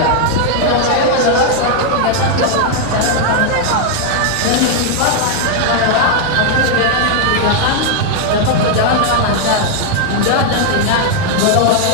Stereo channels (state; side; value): different; both; correlation 0.00